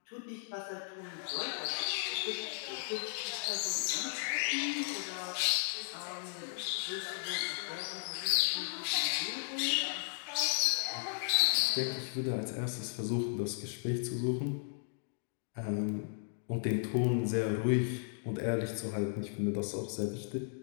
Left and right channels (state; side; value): silent; right; digital silence